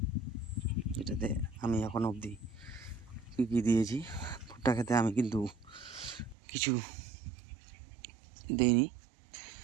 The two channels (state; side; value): drops out; left; at 6.4 s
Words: এটাতে আমি এখন অবধি কী কী দিয়েছি। ভুট্টা খেতে আমি কিন্তু কিছু দিইনি